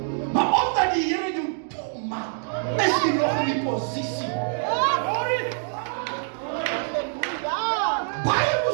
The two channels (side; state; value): left; silent; digital silence